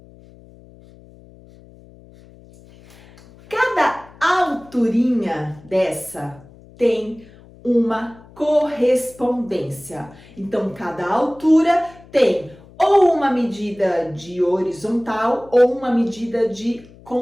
Cada alturinha dessa tem uma correspondência. Então, cada altura tem ou uma medida de horizontal ou uma medida de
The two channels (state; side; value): noise; left; hum, 23 dB below the sound